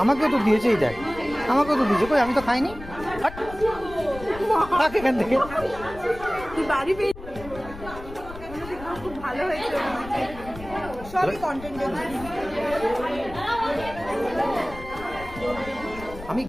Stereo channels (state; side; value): noise; left; rumble, 14 dB below the sound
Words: আমাকেও তো দিয়েছে, এই দেখ আমাকেও তো দিয়েছে, কই আমি তো খাইনি। এখান থেকে আমি